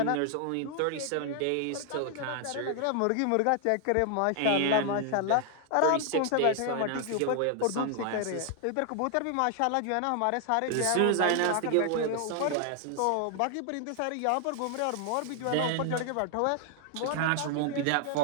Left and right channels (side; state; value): both; different; correlation 0.00